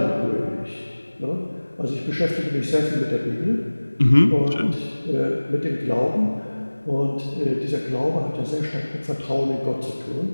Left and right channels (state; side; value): inverted; both; correlation -1.00